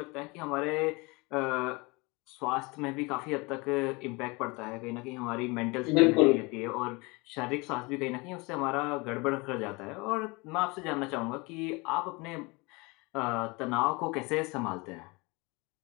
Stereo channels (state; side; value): quieter; right; 26.4 dB